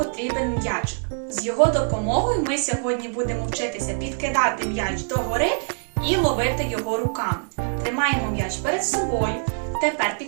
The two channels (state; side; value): silent; left; 62 dB below the other